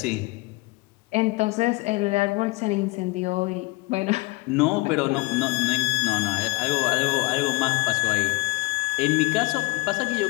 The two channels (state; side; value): quieter; right; 25.4 dB